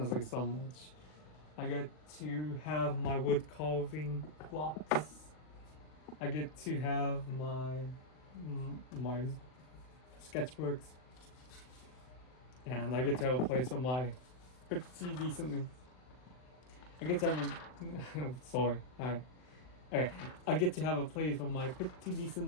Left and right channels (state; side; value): late; right; 39 ms